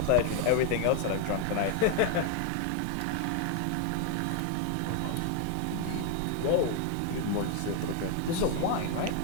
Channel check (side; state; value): both; different; correlation 0.00